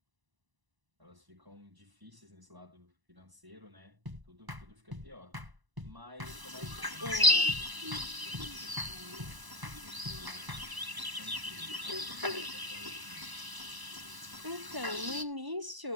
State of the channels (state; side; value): late; left; 1.0 ms